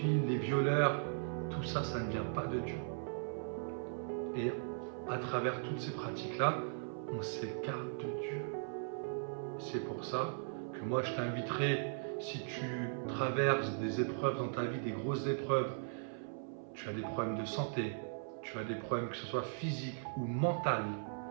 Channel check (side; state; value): left; silent; 52 dB below the other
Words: les violeurs, tout ça, ça ne vient pas de Dieu. Et à travers toutes ces pratiques-là, on s'écarte de Dieu. C'est pour ça que moi je t'inviterai, si tu traverses des épreuves dans ta vie, des grosses épreuves, tu as des problèmes de santé, tu as des problèmes que ce soit physiques ou mentaux,